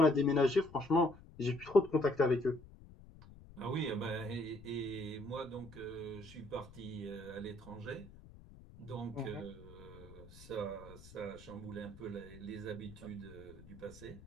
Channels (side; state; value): left; noise; rumble, 19 dB below the sound